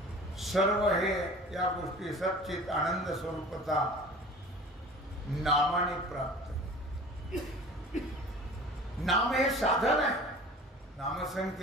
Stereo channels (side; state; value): both; normal; correlation 0.42